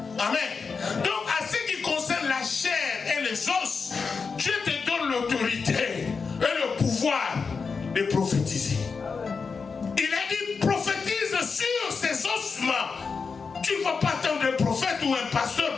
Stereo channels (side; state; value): right; quieter; 5.1 dB